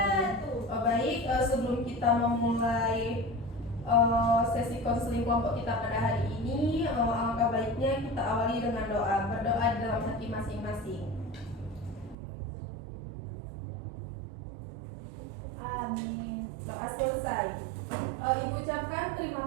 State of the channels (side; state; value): left; drops out; at 12.2 s